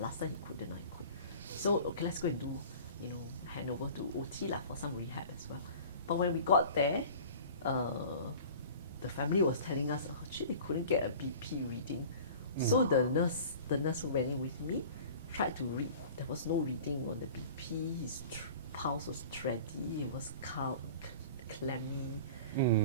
time he couldn't, I could. So, okay, let's go and do, hand over to OT for some rehab as well. But when we got there, the family was telling us, actually, they couldn't get a BP reading. So the nurse who went in with me tried to read. There was no reading on the BP. His pulse was tready. It was clammy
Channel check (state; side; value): inverted; both; correlation -0.42